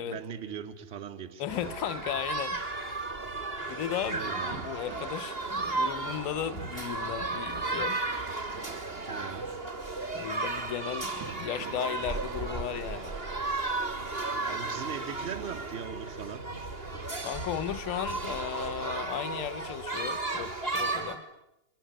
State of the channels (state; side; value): late; right; 2.8 ms